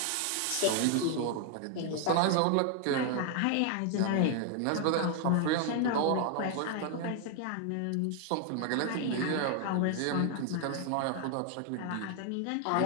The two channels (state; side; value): different; both; correlation 0.00